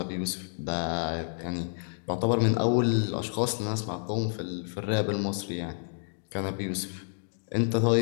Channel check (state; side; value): silent; right; digital silence